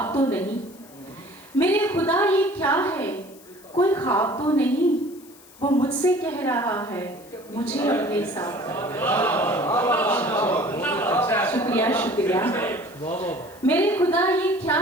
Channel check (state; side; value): noise; left; hiss, 24 dB below the sound